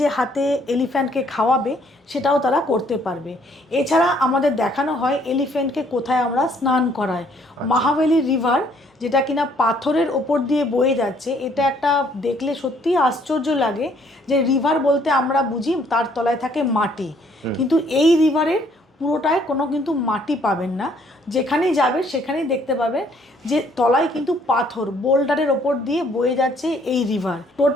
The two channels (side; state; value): both; normal; correlation 0.64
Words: হাতে এলিফ্যান্টকে খাওয়াবে, সেটাও তারা করতে পারবে। এছাড়া আমাদের দেখানো হয় এলিফ্যান্টকে কোথায় আমরা স্নান করাই। মহাবেলি রিভার, যেটা কিনা পাথরের ওপর দিয়ে বয়ে যাচ্ছে, এটা একটা দেখলে সত্যিই আশ্চর্য লাগে যে রিভার বলতে আমরা বুঝি তার তলায় থাকে মাটি, কিন্তু এই রিভারের পুরোটায় কোনো কিন্তু মাটি পাবেন না। যেখানেই যাবে সেখানেই দেখতে পাবেন যে তলায় কিন্তু পাথর, বোল্ডারের ওপর দিয়ে বয়ে যাচ্ছে এই রিভার।